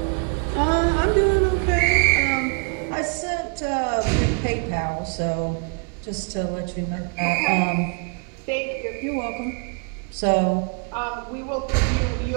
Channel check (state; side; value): quieter; left; 38.8 dB